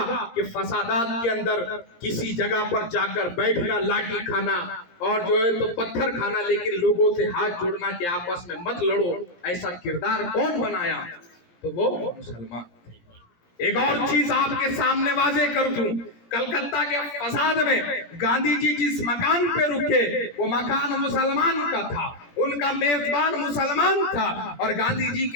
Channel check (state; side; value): late; right; 17 ms